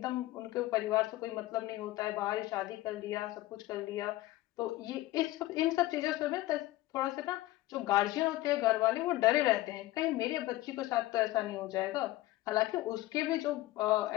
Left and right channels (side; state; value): right; quieter; 17.1 dB